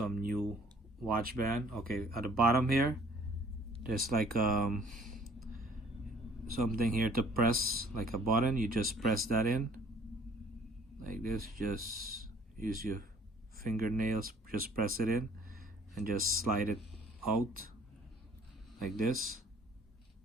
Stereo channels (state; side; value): normal; both; correlation 0.56